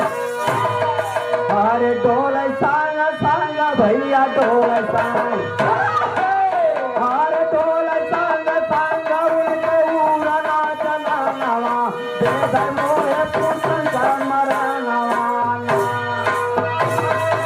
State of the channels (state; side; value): identical; both; correlation 1.00